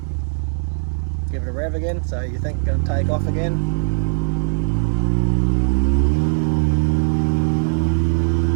Give it a rev again, so you think it's going to take off again.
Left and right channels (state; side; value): silent; left; 57 dB below the other